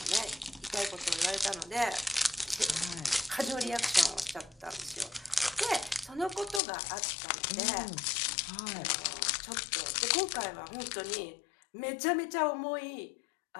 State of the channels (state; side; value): drops out; right; at 6.6 s